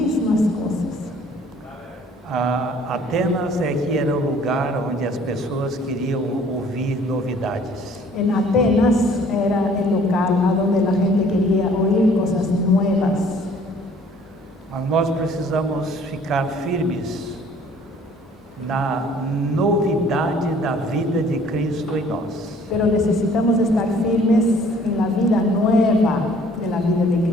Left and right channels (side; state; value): both; normal; correlation 0.56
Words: cosas. Atenas é que era o lugar onde as pessoas queriam ouvir novidades. En Atenas era el local a donde la gente quería oír cosas nuevas. Mas nós precisamos ficar firmes na novidade da vida de Cristo em nós. Pero necesitamos estar firmes en la vida nueva de la vida de